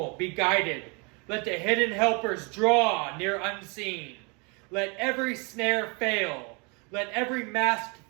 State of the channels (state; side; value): quieter; left; 32.0 dB